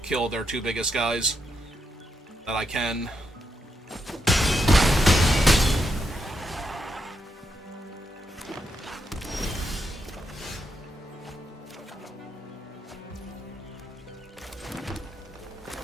kill their 2 biggest guys. That I can.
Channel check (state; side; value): normal; both; correlation 0.82